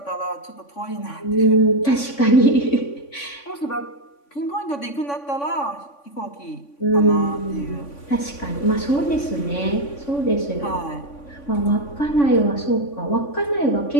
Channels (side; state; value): right; late; 3.5 ms